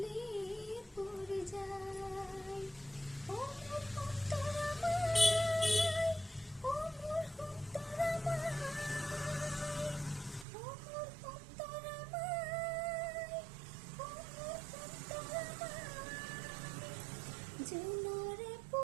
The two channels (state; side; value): drops out; left; at 10.5 s